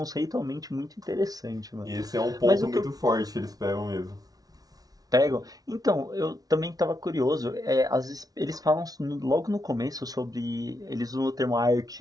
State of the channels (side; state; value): left; late; 0.18 ms